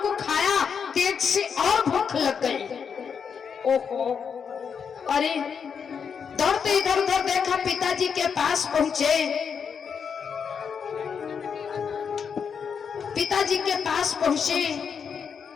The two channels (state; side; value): quieter; right; 6.7 dB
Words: को खाया तेज से और भूख लग गई। ओहो, अरे दौड़ते इधर उधर देखा, पिताजी के पास पहुंचे। पिताजी के पास पहुंचे,